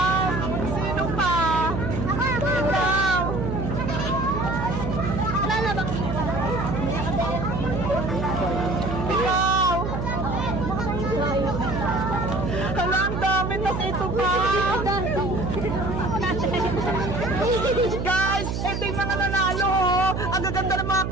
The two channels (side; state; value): right; noise; hum, 2 dB below the sound